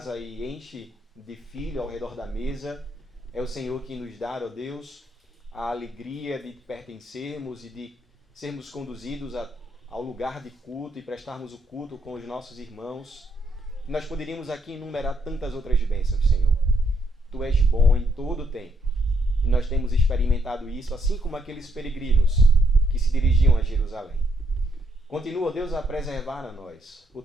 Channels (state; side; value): normal; both; correlation 0.75